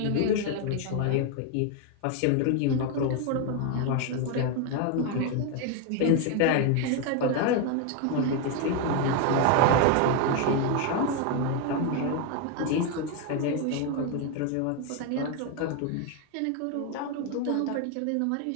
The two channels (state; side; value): different; both; correlation 0.01